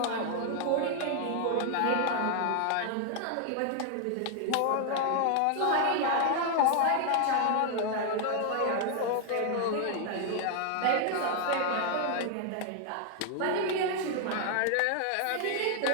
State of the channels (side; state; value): both; different; correlation 0.00